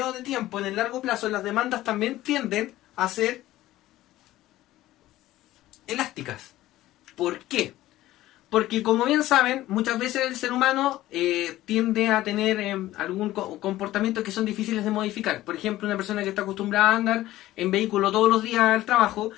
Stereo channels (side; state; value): right; quieter; 15.5 dB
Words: de tiempo, en el largo plazo las demandas también tienden a ser elásticas. ¿Por qué? Porque como bien saben, muchas veces el ser humano tiende a tener algún comportamiento que son difíciles de modificar. Por ejemplo, una persona que está acostumbrada a andar en vehículo todos los días al trabajo,